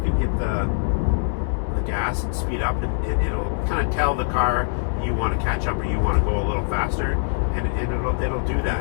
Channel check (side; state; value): right; silent; 63 dB below the other